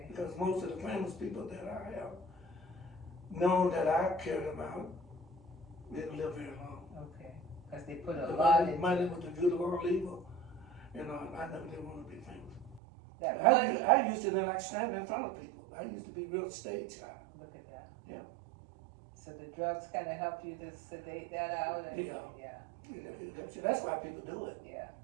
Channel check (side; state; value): left; drops out; at 12.8 s